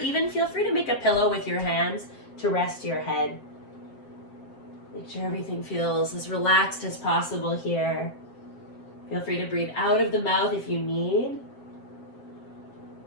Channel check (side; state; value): right; late; 7.6 ms